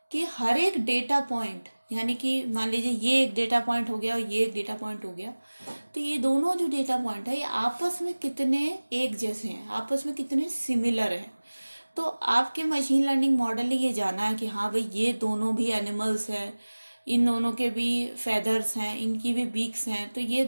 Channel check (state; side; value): inverted; both; correlation -1.00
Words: कि हर एक डेटा पॉइंट, यानी कि मान लीजिए ये एक डेटा पॉइंट हो गया और ये एक डेटा पॉइंट हो गया, तो ये दोनों जो डेटा पॉइंट है ये आपस में कितने एक जैसे हैं, आपस में कितने सिमिलर हैं। तो आपके मशीन लर्निंग मॉडल ने ये जाना है कि हाँ भाई, ये दोनों भी एनिमल्स हैं, इन दोनों के भी फेदर्स हैं, इनकी भी बीक्स हैं, तो ये